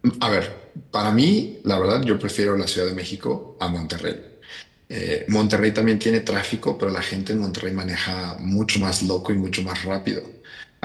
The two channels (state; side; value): identical; both; correlation 1.00